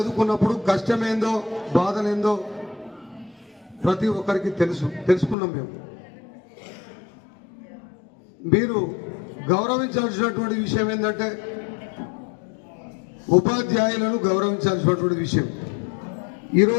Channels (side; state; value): right; drops out; at 5.4 s